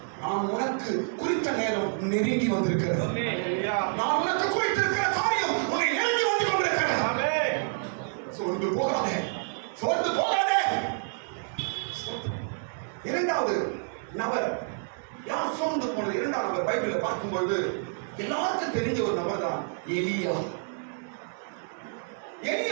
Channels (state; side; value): silent; left; 59 dB below the other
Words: நான் உனக்கு குறித்த நேரம் நெருங்கி வந்திருக்கிறது. நான் உனக்கு குறித்திருக்கிற காரியம் உன்னை நெருங்கி வந்து கொண்டிருக்கிறது. சோர்ந்து போகாதே, சோர்ந்து போகாதே. இரண்டாவது நபர் யார் சோர்ந்து போனது? இரண்டாவது நபர் பைபிளை பார்க்கும்போது எல்லாருக்கும் தெரிஞ்ச ஒரு நபர் தான் எலியா.